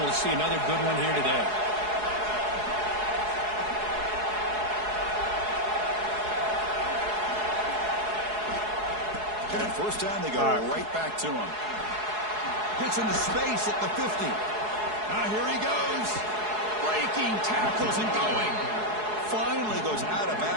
to see another good one here today. And at first down, they go right back to him. Gets into space at the 50. Here he goes. Breaking tackles and going. Finally goes out of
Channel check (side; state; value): left; late; 4.7 ms